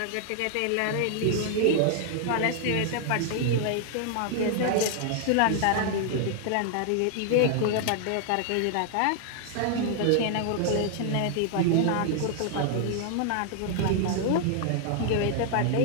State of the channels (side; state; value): both; different; correlation 0.00